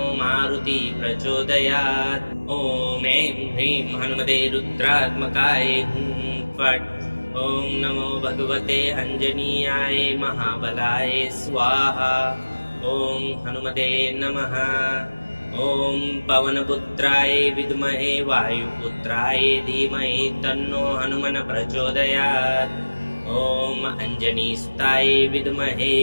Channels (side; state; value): both; inverted; correlation -1.00